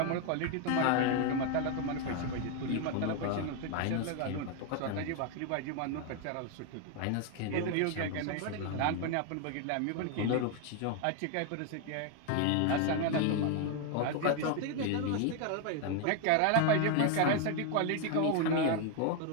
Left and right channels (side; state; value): both; different; correlation 0.01